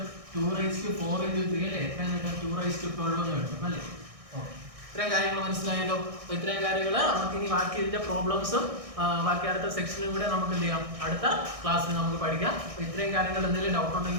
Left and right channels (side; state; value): left; late; 1.6 ms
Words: 2⁴ × 3 അല്ലേ? എങ്ങനെ 2⁻12 എന്ന് കിട്ടും അല്ലേ? ഓക്കെ, ഇത്രയും കാര്യങ്ങൾ മനസ്സിലായല്ലോ. അപ്പോൾ ഇത്രയും കാര്യങ്ങൾ നമുക്ക് ഇനി ബാക്കി ഇതിന്റെ പ്രോബ്ലംസും ബാക്കി അടുത്ത സെക്ഷനും കൂടെ നമുക്ക് എന്ത് ചെയ്യാം? അടുത്ത ക്ലാസ്സിൽ നമുക്ക് പഠിക്കാം. അപ്പോൾ ഇത്രയും കാര്യങ്ങൾ എന്തെങ്കിലും ഡൗട്ട്